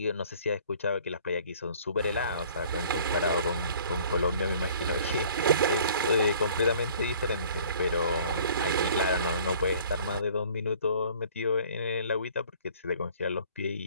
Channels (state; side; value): inverted; both; correlation -0.53